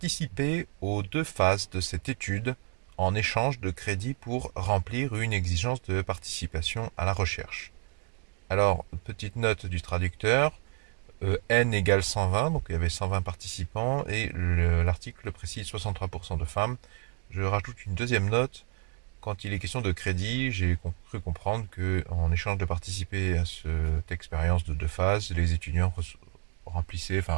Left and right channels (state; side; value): quieter; left; 36.6 dB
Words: aux 2 phases de cette étude en échange de crédits pour remplir une exigence de participation à la recherche. Alors, petite note du traducteur, N égale 120, donc il y avait 120 participants, et l'article précise 63% de femmes. Je rajoute une deuxième note. Quand il est question de crédit, j'ai cru comprendre qu'en échange de participer à cette expérience de 2 phases, les étudiants